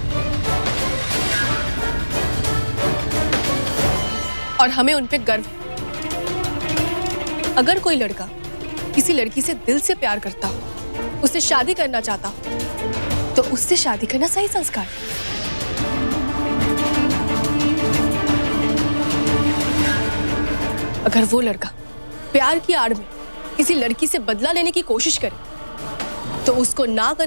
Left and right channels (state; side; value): inverted; both; correlation -1.00